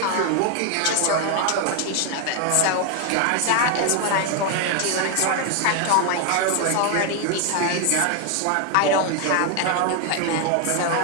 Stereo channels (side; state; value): both; different; correlation 0.01